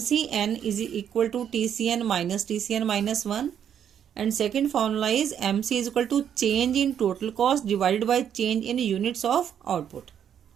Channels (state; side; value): quieter; left; 9.0 dB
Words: is equal to TCN minus 1 and second formula is MC is equal to change in total cost divided by change in units of output.